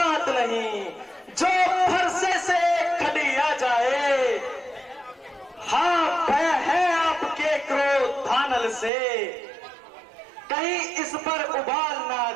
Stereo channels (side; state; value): left; drops out; at 8.9 s